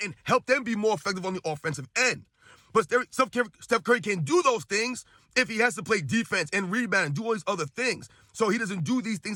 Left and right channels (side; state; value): both; identical; correlation 1.00